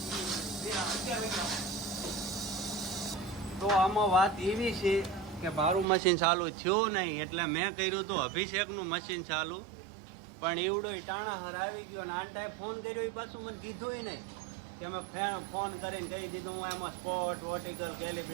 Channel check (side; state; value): left; drops out; at 5.9 s